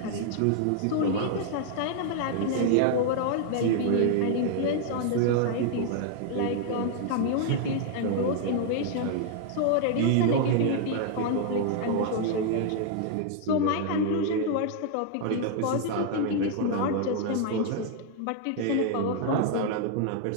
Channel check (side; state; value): both; different; correlation 0.00